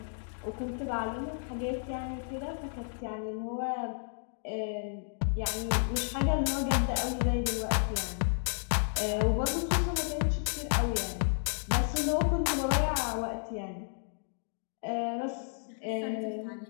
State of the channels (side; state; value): right; silent; digital silence